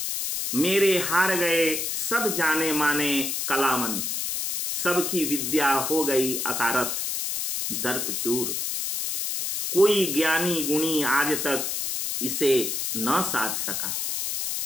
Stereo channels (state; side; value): noise; left; hiss, 2 dB below the sound